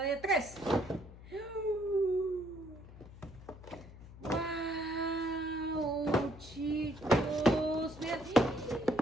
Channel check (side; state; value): left; noise; hum, 17 dB below the sound